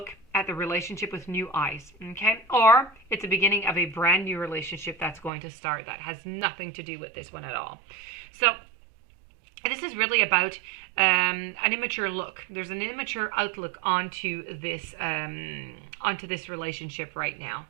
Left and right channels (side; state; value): left; drops out; at 5.3 s